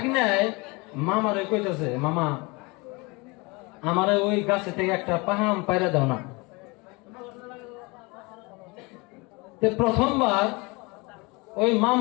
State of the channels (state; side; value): quieter; right; 26.7 dB